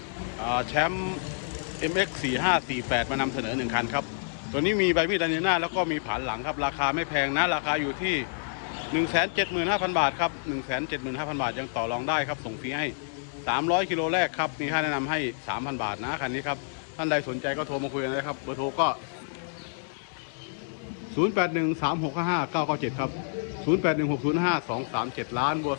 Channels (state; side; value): silent; right; digital silence